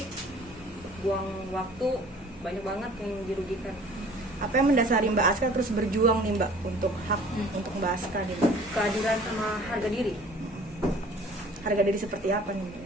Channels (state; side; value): normal; both; correlation 0.50